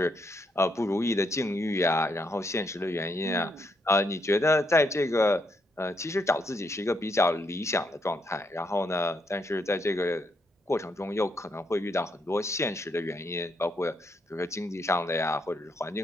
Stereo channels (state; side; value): normal; both; correlation 0.76